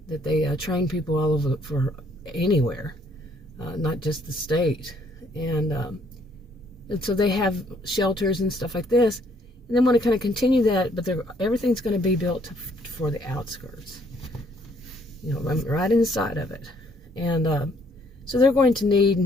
train people all over for anywhere, not just the state. And so they have shelters and stuff like this. And they want to kind of continue that, but everything's going to be built for the outskirts. Right inside of it. And so they're going to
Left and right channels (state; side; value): normal; both; correlation 0.66